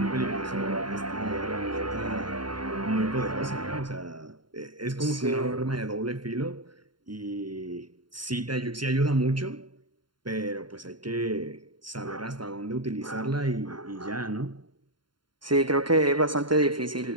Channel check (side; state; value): left; late; 0.72 ms